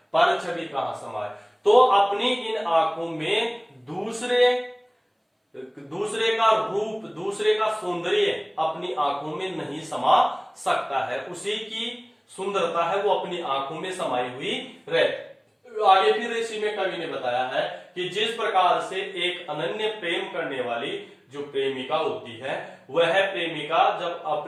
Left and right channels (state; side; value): identical; both; correlation 1.00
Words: पर छवि कहां समाये? तो अपनी इन आंखों में दूसरे का रूप, दूसरे का सौंदर्य अपनी आंखों में नहीं समा सकता है। उसी की सुंदरता है वो अपनी आंखों में समाई हुई रहती। आगे फिर इसी में कवि ने बताया है कि जिस प्रकार से एक अनन्य प्रेम करने वाली जो प्रेमिका होती है, वह प्रेमिका जब